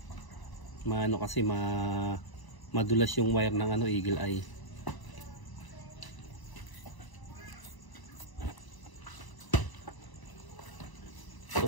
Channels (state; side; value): late; right; 1.0 ms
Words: Kasi madulas yung wire ng Eagle Eye.